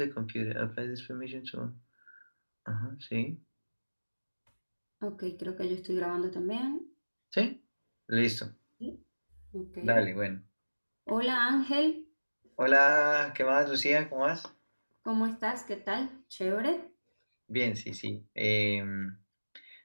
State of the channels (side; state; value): both; inverted; correlation -1.00